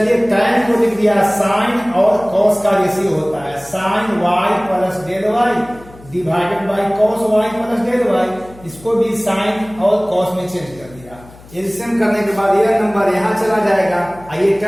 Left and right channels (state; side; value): noise; left; hum, 22 dB below the sound